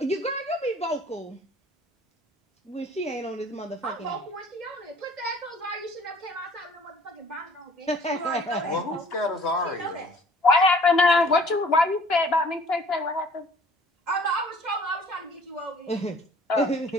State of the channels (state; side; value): normal; both; correlation 0.53